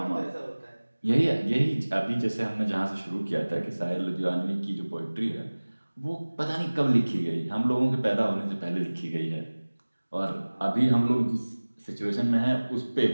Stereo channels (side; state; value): both; inverted; correlation -1.00